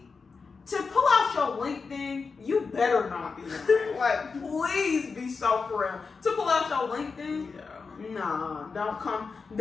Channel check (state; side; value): quieter; right; 4.8 dB